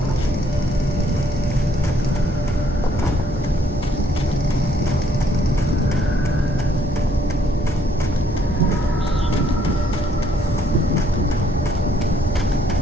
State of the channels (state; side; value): normal; both; correlation 0.67